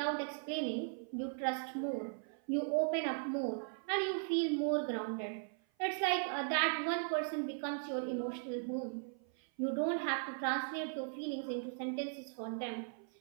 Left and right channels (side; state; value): left; silent; 52 dB below the other